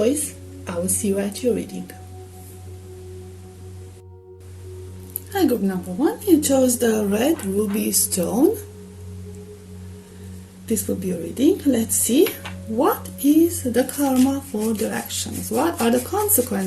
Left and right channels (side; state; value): both; identical; correlation 1.00